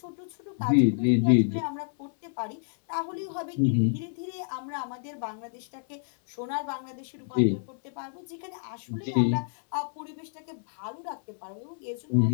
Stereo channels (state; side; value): silent; right; 58 dB below the other